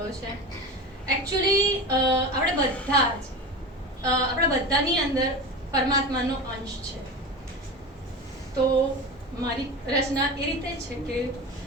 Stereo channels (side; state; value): both; normal; correlation 0.28